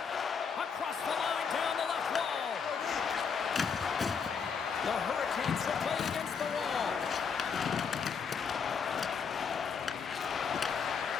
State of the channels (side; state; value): right; quieter; 6.2 dB